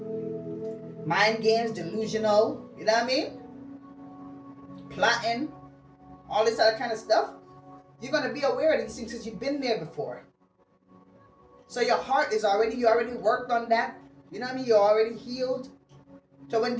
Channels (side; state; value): both; identical; correlation 1.00